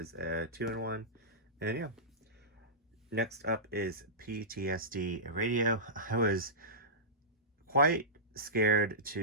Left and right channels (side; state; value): both; normal; correlation -0.18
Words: a 2-in-1. And yeah, next up is PTSD Radio. I was quite scared